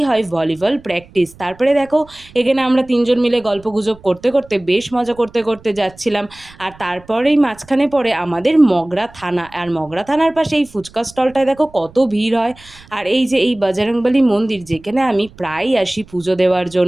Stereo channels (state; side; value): noise; right; rumble, 24 dB below the sound